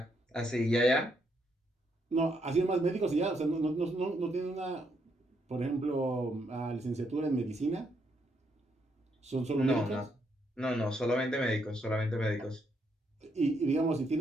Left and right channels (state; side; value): normal; both; correlation 0.76